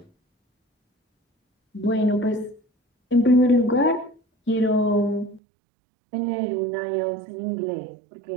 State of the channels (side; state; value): left; drops out; at 5.4 s